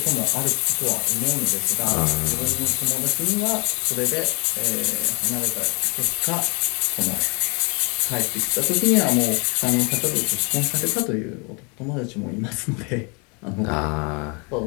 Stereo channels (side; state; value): right; quieter; 32.6 dB